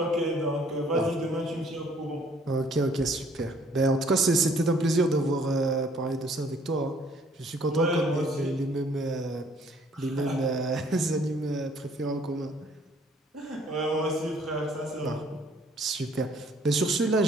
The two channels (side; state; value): both; normal; correlation 0.60